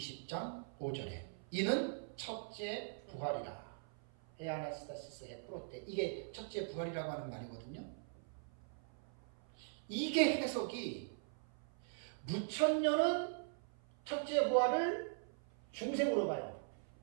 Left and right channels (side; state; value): left; silent; 50 dB below the other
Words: 5절에 이는 첫째 부활이라. 해 아나스타시스 해 프로테, 이게 첫째 부활이라고 하는 말이거든요. 이게 해석이 무천년은 첫째 부활을 중생으로 봐요.